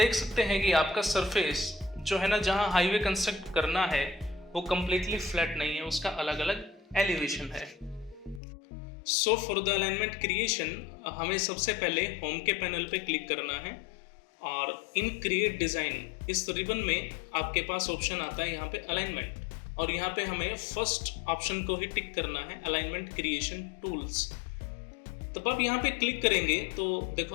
सकते हैं कि आपका सरफेस जो है ना, जहाँ हाईवे कंस्ट्रक्ट करना है वो कम्प्लीटली फ्लैट नहीं है, उसका अलग अलग एलिवेशन है। So for the alignment creation हमें सबसे पहले होम के पैनल पे क्लिक करना है और इन क्रिएट डिज़ाइन इस रिबन में आपके पास ऑप्शन आता है यहाँ पे अलाइनमेंट, और यहाँ पे हमें फर्स्ट ऑप्शन को ही टिक करना है, अलाइनमेंट क्रिएशन टूल्स। तब आप यहाँ पे क्लिक करेंगे तो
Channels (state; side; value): drops out; right; at 8.4 s